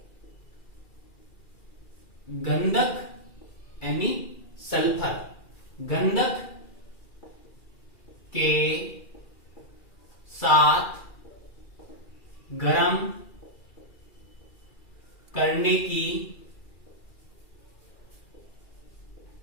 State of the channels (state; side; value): late; right; 2.4 ms